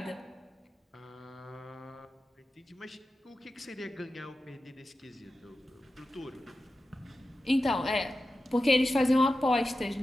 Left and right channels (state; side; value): normal; both; correlation 0.92